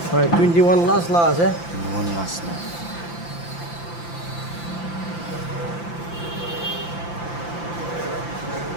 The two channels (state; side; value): late; right; 5.9 ms